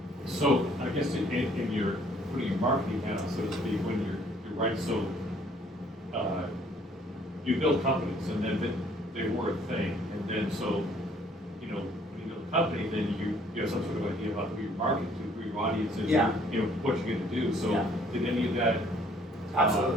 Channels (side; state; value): both; normal; correlation 0.60